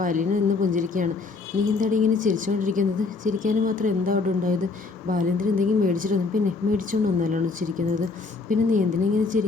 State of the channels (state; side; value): quieter; right; 4.1 dB